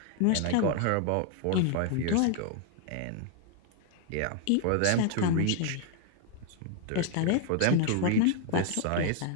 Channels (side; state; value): both; different; correlation 0.00